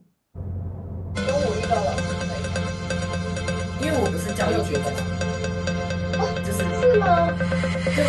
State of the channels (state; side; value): identical; both; correlation 1.00